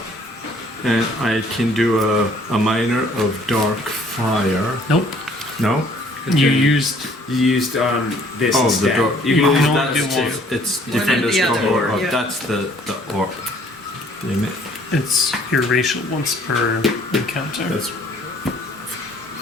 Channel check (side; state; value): both; normal; correlation 0.59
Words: And I can do a minor of dark fire. Nope. No? You used. You used this Oh, instead. the dark. You You can can use only that do too. one. It's One different and as the the other, orb. yeah. That's the orb. Damn it. It's your racial once per encounter. That's.